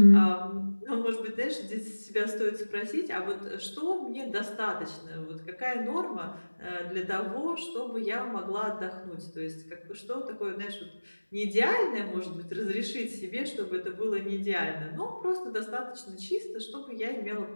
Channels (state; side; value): inverted; both; correlation -1.00